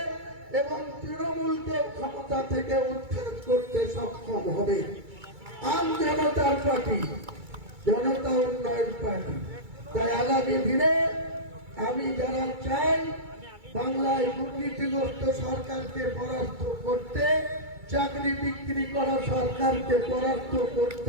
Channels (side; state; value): left; late; 2.3 ms